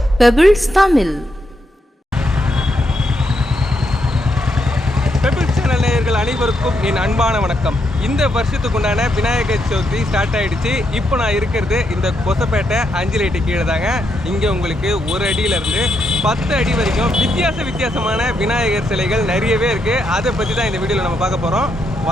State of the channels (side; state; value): both; normal; correlation 0.80